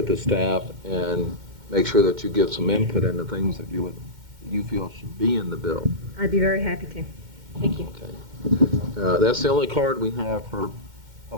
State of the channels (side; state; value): left; late; 2.1 ms